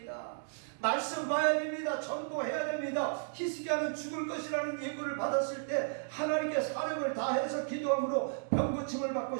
말씀 봐야 됩니다. 전도해야 됩니다. 히스기야는 죽을 것이라는 예고를 받았을 때 하나님께 사력을 다해서 기도함으로 병고침을 받고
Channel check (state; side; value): silent; left; digital silence